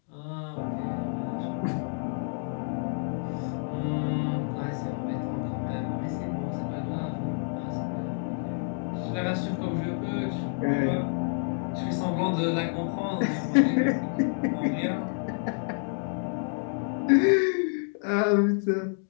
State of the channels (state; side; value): silent; right; 57 dB below the other